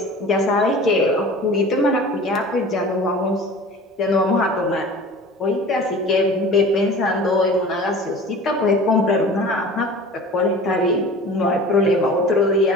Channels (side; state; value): both; normal; correlation 0.40